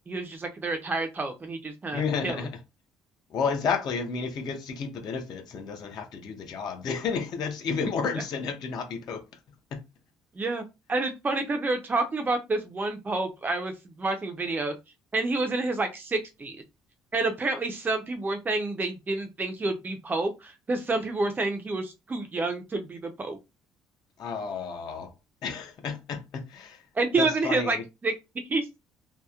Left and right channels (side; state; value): both; normal; correlation 0.62